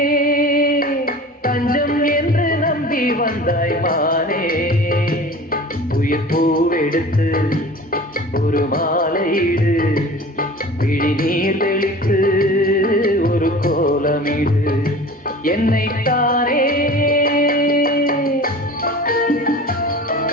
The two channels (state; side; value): normal; both; correlation 0.40